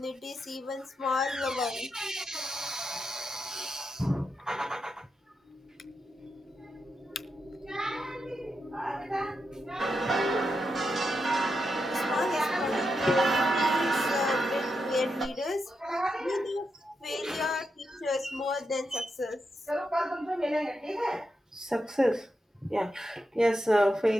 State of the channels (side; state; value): both; normal; correlation 0.85